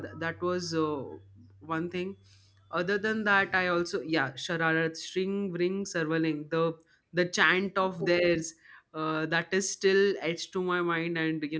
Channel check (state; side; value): identical; both; correlation 1.00